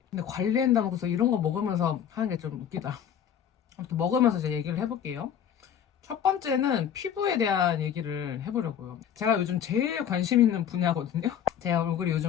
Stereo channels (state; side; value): quieter; right; 9.0 dB